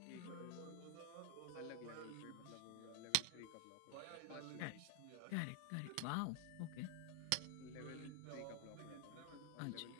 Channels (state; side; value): different; both; correlation 0.00